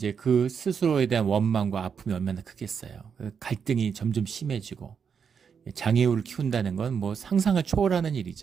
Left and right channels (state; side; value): quieter; left; 6.7 dB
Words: 그 스스로에 대한 원망과 아픔이 얼마나 크겠어요. 갈등이 점점 심해지고, 장애우를 키운다는 건 뭐 상상을 초월하는